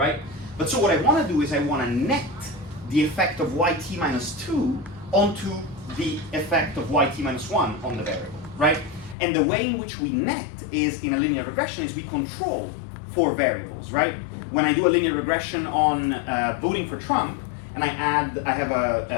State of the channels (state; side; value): drops out; right; at 9.2 s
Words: But so what I want to do is I want to net the effect of yt minus 2 onto the effect of yt minus 1 on the variable, right? And the way in which we net is in a linear regression is we control 4 variables, right? When I do a linear regression on voting for Trump, and I have